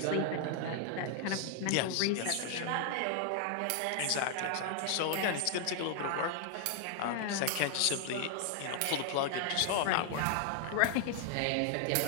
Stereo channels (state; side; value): different; both; correlation 0.00